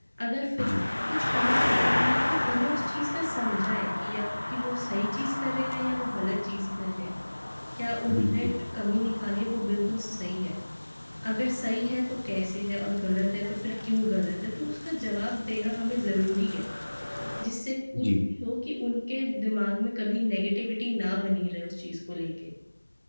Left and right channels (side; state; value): both; inverted; correlation -1.00